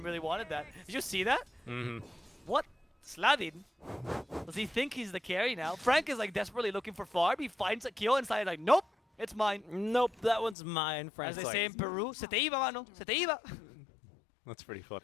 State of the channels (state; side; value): drops out; right; at 10.6 s